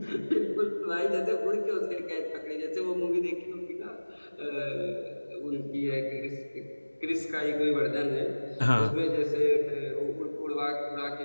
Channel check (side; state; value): both; inverted; correlation -1.00